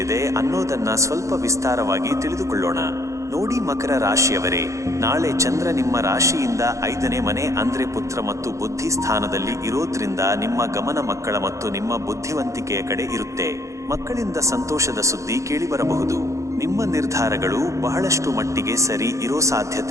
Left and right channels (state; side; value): late; left; 0.15 ms